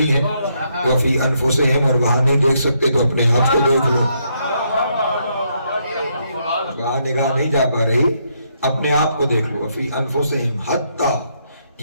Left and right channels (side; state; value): both; inverted; correlation -0.75